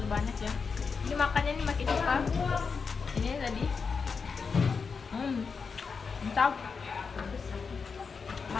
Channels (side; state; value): right; quieter; 5.3 dB